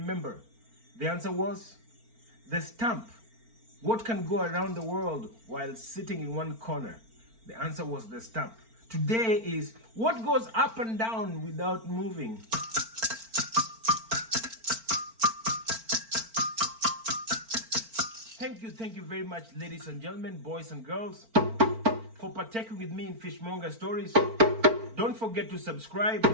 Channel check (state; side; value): late; left; 4.4 ms